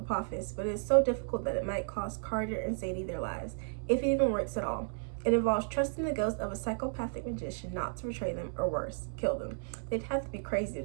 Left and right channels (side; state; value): left; silent; 56 dB below the other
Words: but it's so difficult that it might cost Carter and Sadie their lives, if it even works at all. It involves trusting the ghost of a psychopathic magician not to betray them, or worse, kill them. They'd have to be crazy